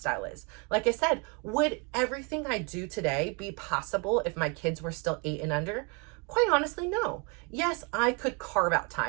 is. Like I said, would everything I do today be possible if my kids were still 8 and under? Quite honestly, no. Yes, I could carve out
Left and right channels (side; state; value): left; quieter; 31.7 dB